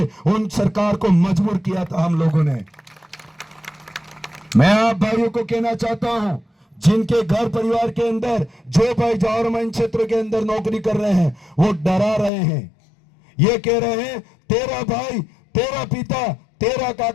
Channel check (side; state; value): right; drops out; at 12.3 s